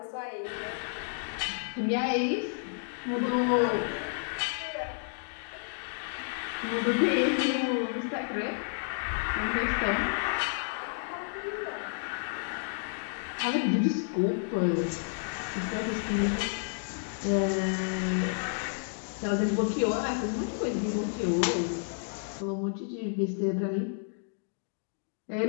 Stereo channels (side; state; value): right; silent; digital silence